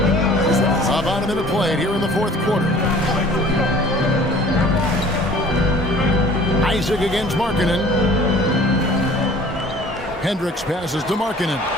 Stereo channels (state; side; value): normal; both; correlation 0.49